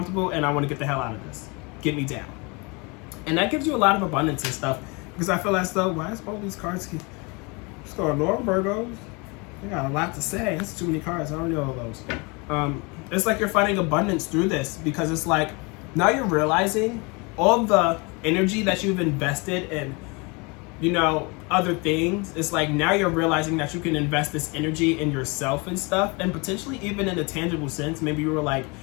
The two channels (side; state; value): right; quieter; 29.0 dB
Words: and I want to get the hell out of this. Get me down. And that gives you a lot of abundance and stuff, because I feel as though, why is all these cards keep going on, Virgos? They got a lot to say. It's too many cards. I don't know all those. It's like you're finding abundance through this, because it's like now you're realizing all the energy that you've invested in, other things. It's like now you're realizing that you can invest this energy in yourself and stuff, and potentially even in a tangible sense. Maybe you were like,